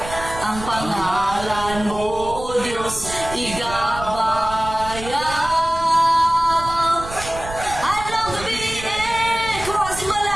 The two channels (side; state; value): right; noise; rumble, 11 dB below the sound